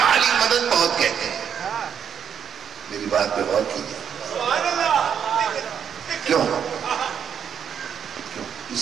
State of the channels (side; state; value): left; quieter; 8.1 dB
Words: علی مدد بہت کہتے ہیں۔ میری بات پہ غور کیجیے، کیوں؟